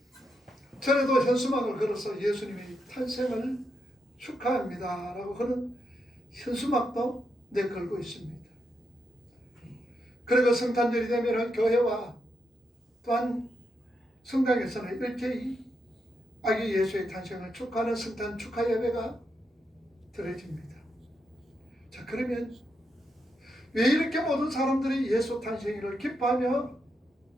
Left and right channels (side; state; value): both; normal; correlation 0.82